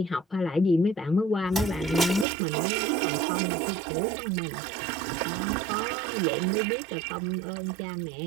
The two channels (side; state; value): left; drops out; at 2.2 s